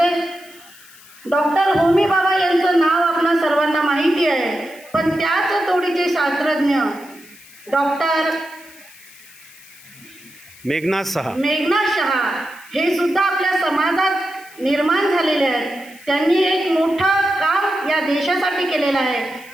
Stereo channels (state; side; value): noise; left; hiss, 22 dB below the sound